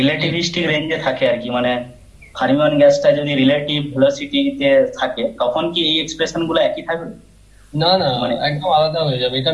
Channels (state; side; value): identical; both; correlation 1.00